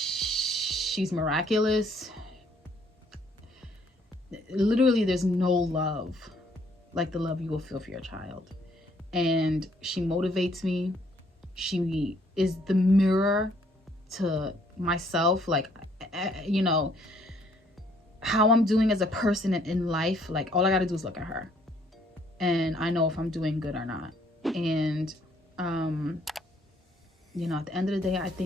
miraculous. Literally, there's no love like the love you will feel for your child. And she motivates me. She is the mirror to myself, like, you know, how I'm doing as a person in life. Like, all I gotta do is look at her, and I know if I'm doing good or not. And you know, at the end of the day, I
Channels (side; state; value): both; normal; correlation 0.65